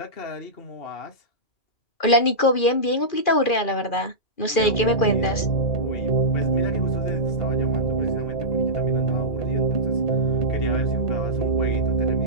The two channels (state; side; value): late; right; 2.4 ms